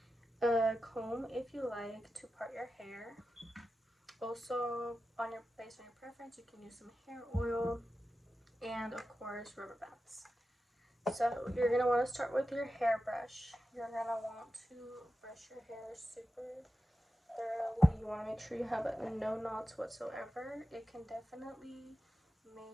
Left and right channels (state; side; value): normal; both; correlation 0.92